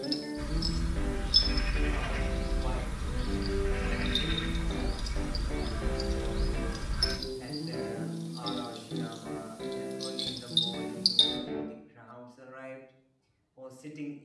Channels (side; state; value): both; identical; correlation 1.00